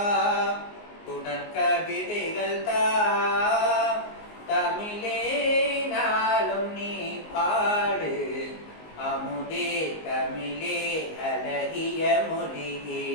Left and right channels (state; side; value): late; right; 19 ms